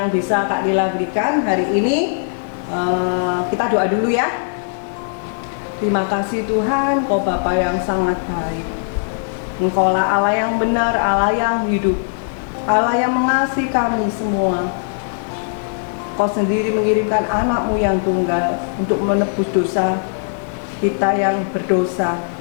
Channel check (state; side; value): silent; right; digital silence